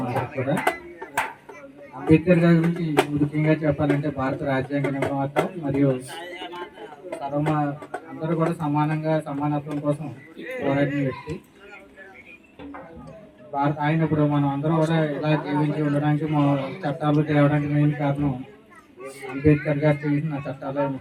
అందరికి కూడా. అంబేద్కర్ గారి గురించి ముఖ్యంగా చెప్పాలంటే భారత రాజ్యాంగ నిర్మాత మరియు అందరూ కూడా సమానత్వం కోసం పోరాడిన వ్యక్తి. ఆయన ఇప్పుడు మనం అందరం కూడా ఇలా జీవించి ఉండడానికి మా చట్టాలు తేవడానికి మెయిన్ కారణం అంబేద్కర్ గారు చేసిన చట్టాలే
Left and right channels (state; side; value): identical; both; correlation 1.00